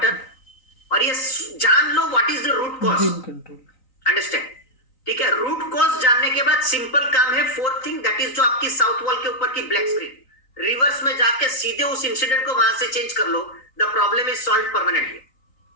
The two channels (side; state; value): right; late; 3.9 ms